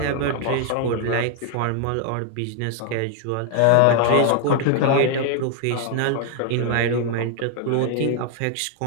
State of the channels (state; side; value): different; both; correlation 0.00